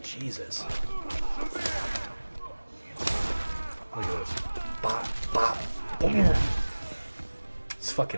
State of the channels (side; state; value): both; inverted; correlation -1.00